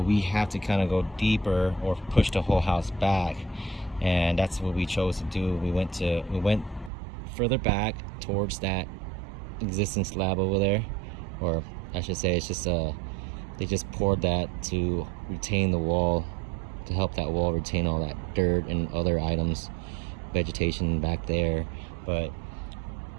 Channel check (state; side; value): drops out; left; at 6.9 s